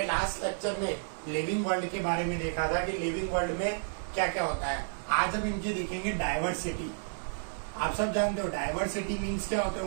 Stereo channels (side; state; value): left; silent; digital silence